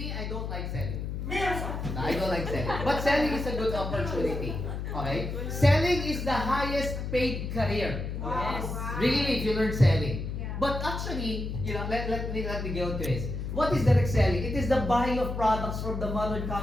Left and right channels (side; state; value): left; noise; hum, 4 dB below the sound